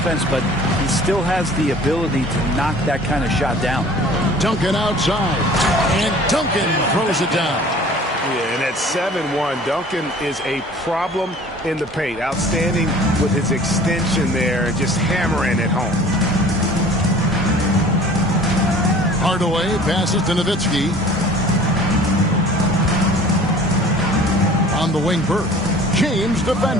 but he still has the ability to knock that kind of shot down. Duncan outside. And Duncan throws it down. Yeah, and at 7-1, Duncan is a problem in the paint. Outstanding with his extension there, just hammering it home. Hardaway passes to Nowitzki. On the wing, Bird. James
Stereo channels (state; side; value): normal; both; correlation 0.47